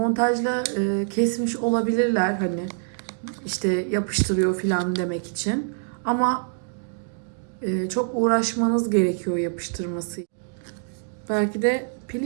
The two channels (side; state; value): left; silent; digital silence